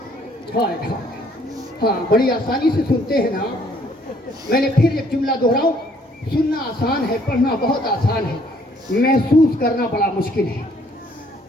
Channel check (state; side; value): normal; both; correlation 0.63